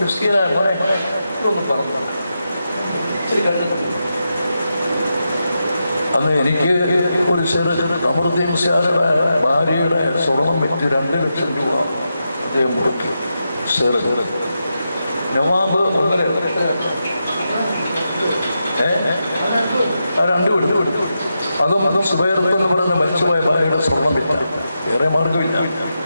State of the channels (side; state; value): both; inverted; correlation -0.87